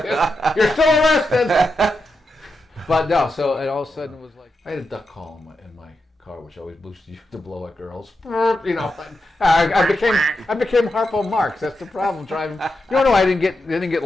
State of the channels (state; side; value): normal; both; correlation 0.87